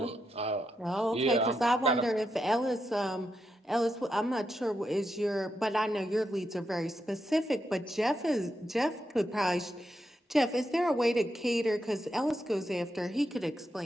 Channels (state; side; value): normal; both; correlation 0.84